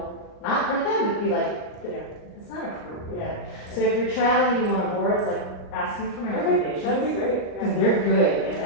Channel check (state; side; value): late; right; 38 ms